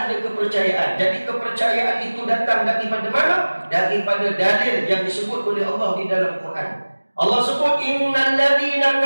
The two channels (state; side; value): inverted; both; correlation -1.00